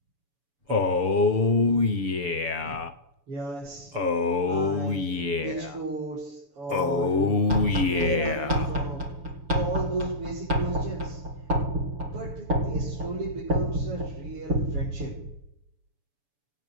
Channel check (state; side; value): late; left; 7.0 ms